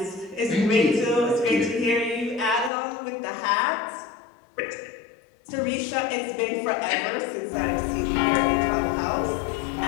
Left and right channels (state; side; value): drops out; right; at 2.7 s